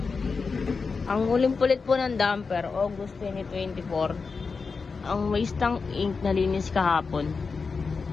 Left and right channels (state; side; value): quieter; right; 4.8 dB